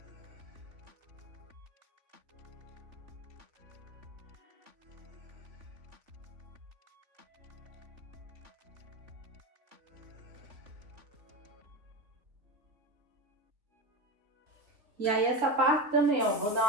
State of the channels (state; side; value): late; left; 3.3 ms